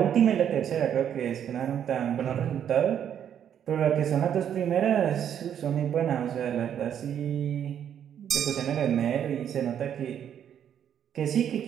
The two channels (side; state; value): left; quieter; 9.2 dB